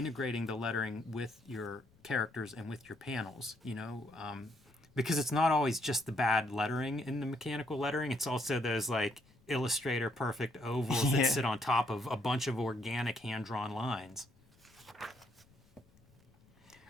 the lettering with your characters and with your panels, because it's not always just the bad lettering in the mechanical lettering. It's also those like Illustrator perfect ovals that sit on top of a bunch of organic hand-drawn lines.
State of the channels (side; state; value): left; noise; rumble, 30 dB below the sound